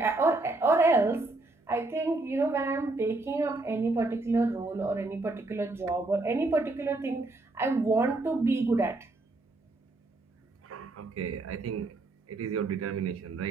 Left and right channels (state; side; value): quieter; left; 3.0 dB